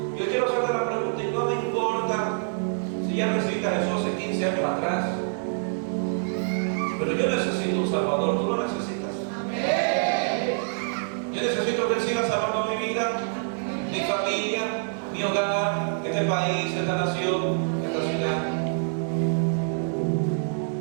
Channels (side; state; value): left; silent; digital silence